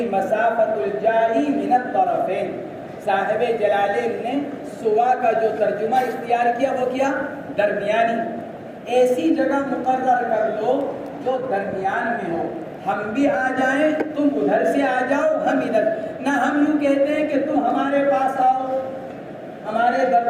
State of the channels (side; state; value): both; identical; correlation 1.00